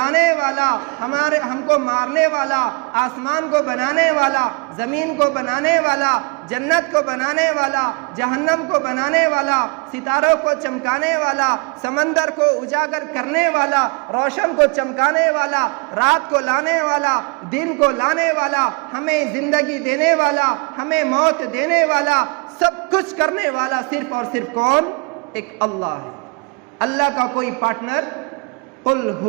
والا، ہم کو مارنے والا، آسمان کو بنانے والا، زمین کو بنانے والا، جنت کو بنانے والا، جہنم کو بنانے والا، ستاروں کو چمکانے والا، سمندر کو اجاگر کرنے والا، روشن کو چمکانے والا، رات کو لانے والا، دن کو لانے والا، ہمیں زندگی دینے والا، ہمیں موت دینے والا، سب کچھ کرنے والا صرف اور صرف کون؟ ایک اللہ ہے۔ اللہ کا کوئی پارٹنر؟ قل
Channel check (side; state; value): left; quieter; 32.2 dB